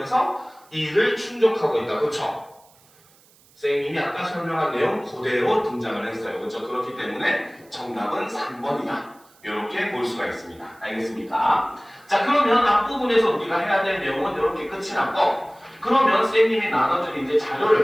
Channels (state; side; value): noise; right; hiss, 29 dB below the sound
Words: 이를 충족하고 있다. 그렇죠? 선생님이 아까 설명한 내용 그대로 등장을 했어요. 그렇죠? 그렇기 때문에 정답은 3번이다. 이렇게 볼 수가 있습니다. 알겠습니까? 자, 그러면 앞부분에서 우리가 해야 될 내용은 이렇게 끝이 났고, 그러면 선생님이 나눠준 이제